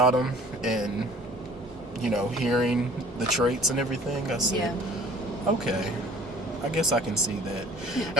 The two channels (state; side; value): normal; both; correlation 0.51